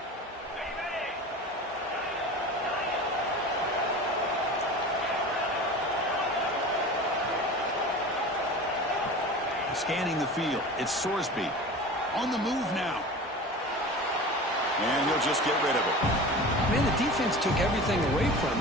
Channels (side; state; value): both; normal; correlation 0.35